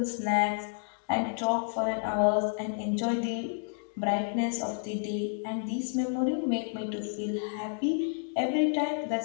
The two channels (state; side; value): silent; right; digital silence